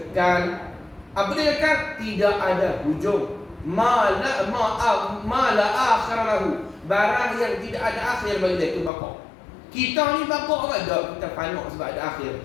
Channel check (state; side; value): drops out; right; at 8.9 s